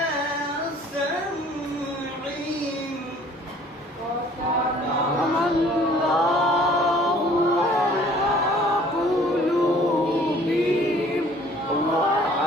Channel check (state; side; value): normal; both; correlation 0.54